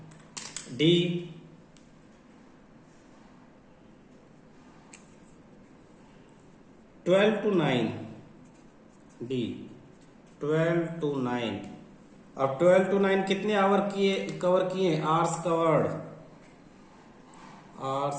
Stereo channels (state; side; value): identical; both; correlation 1.00